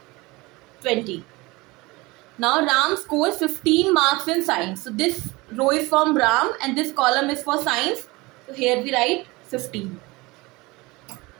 20. Now Ram scores 15 marks in science. So this row is from Ram and this column is for science. So here we write 15.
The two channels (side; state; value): left; quieter; 22.9 dB